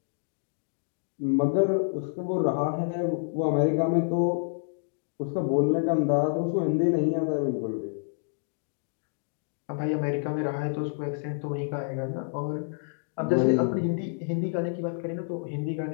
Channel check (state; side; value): silent; right; digital silence